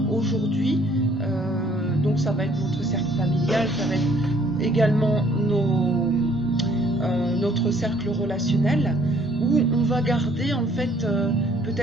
aujourd'hui Donc ça va être notre cercle familial, ça va être également notre cercle relationnel, où on va garder en fait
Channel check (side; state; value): both; normal; correlation 0.61